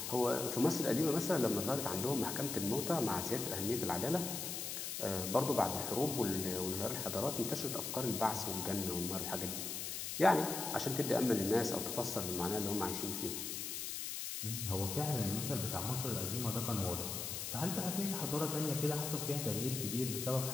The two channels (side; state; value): left; noise; hiss, 4 dB below the sound